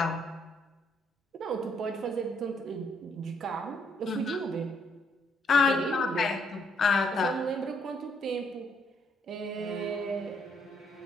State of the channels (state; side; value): normal; both; correlation 0.71